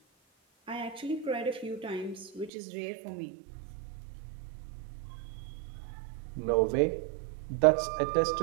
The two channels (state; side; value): drops out; left; at 2.5 s